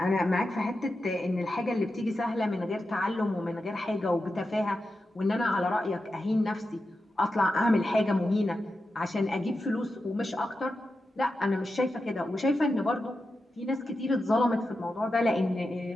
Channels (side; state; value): both; normal; correlation 0.90